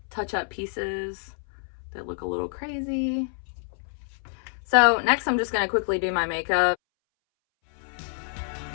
touch up pieces that look a little crazy. So next I'm just going to quickly do my makeup.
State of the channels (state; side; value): silent; right; 60 dB below the other